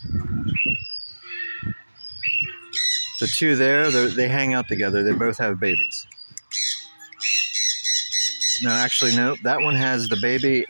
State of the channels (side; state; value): both; inverted; correlation -1.00